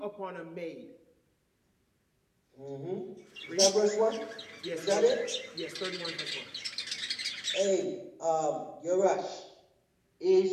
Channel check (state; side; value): identical; both; correlation 1.00